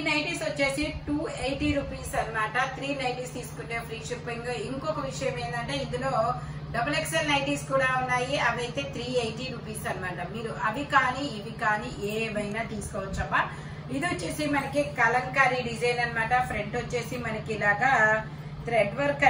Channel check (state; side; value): identical; both; correlation 1.00